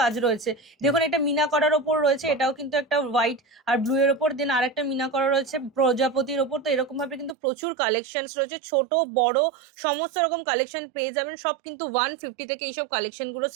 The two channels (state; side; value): drops out; left; at 7.4 s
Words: রয়েছে। দেখুন এটা মিনা করার ওপর রয়েছে, এটাও কিন্তু একটা হোয়াইট আর ব্লু এর ওপর। দেন আরেকটা মিনা করা রয়েছে প্রজাপতির ওপর। তো এরকম ভাবে কিন্তু প্রচুর কালেকশন রয়েছে, ছোট বড় সমস্ত রকম কালেকশন পেয়ে যাবেন। সব কিন্তু 150 থেকে এইসব কালেকশন গুলো